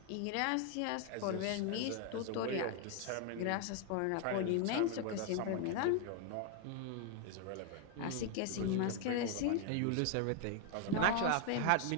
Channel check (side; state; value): both; different; correlation 0.01